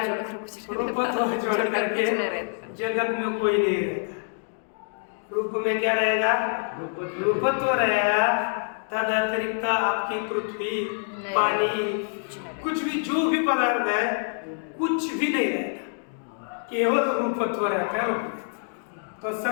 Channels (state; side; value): silent; right; 61 dB below the other